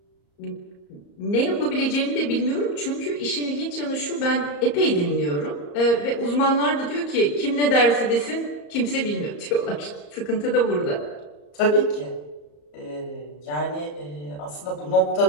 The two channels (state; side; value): late; right; 34 ms